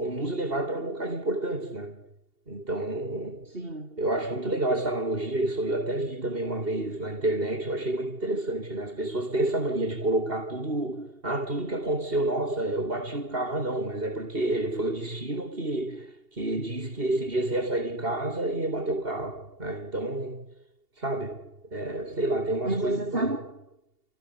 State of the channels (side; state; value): left; late; 2.8 ms